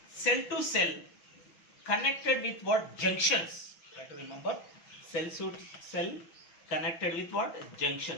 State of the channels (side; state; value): right; late; 6.0 ms